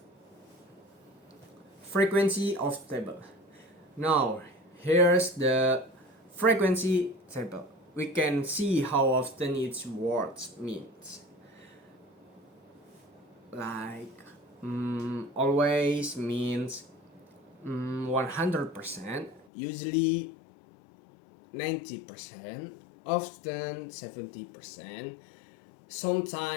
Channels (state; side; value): drops out; right; at 19.5 s